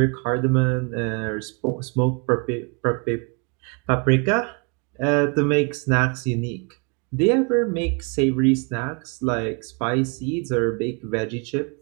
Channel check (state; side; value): quieter; left; 33.6 dB